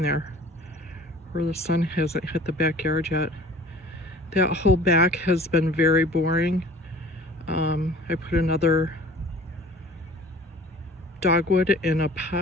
there, where the sun hasn't hit the backyard yet. That whole back has been very boring. I put another dogwood in a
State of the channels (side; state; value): both; normal; correlation 0.47